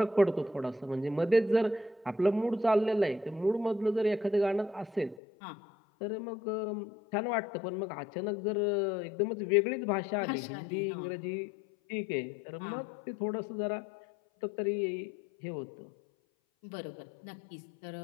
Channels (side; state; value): right; drops out; at 5.2 s